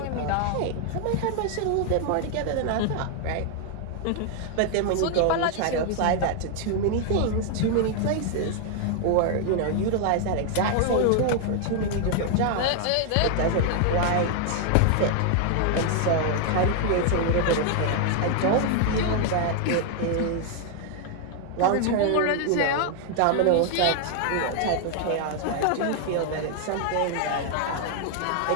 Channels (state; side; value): different; both; correlation 0.00